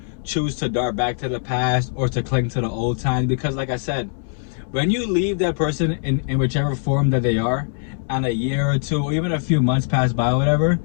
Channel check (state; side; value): silent; right; 62 dB below the other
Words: choose to dart back to the past or to cling to the old times, because like I said, when you leave that person in whichever form that they are, and a year or two or even a few months pass by or whatever,